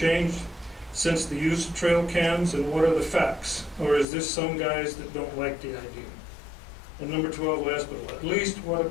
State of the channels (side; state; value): right; drops out; at 4.0 s